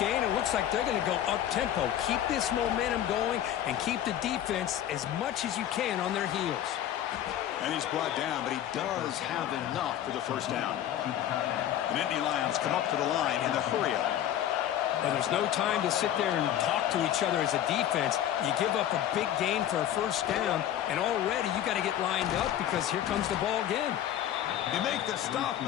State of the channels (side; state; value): right; quieter; 11.3 dB